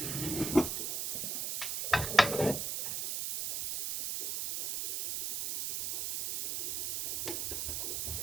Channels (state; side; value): noise; right; hiss, 1 dB below the sound